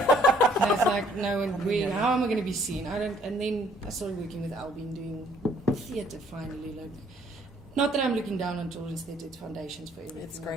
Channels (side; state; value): both; normal; correlation 0.62